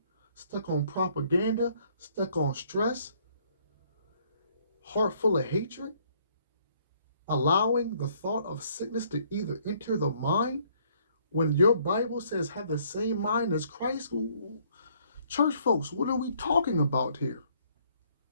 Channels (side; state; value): both; inverted; correlation -0.64